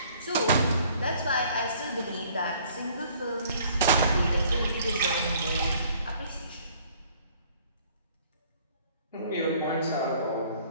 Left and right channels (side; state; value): both; inverted; correlation -0.58